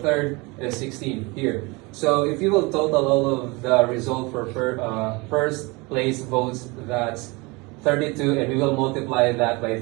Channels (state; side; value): quieter; left; 25.9 dB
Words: third is 16 here. So if you will total all of the result for first place votes, that's 32, and we will multiply that by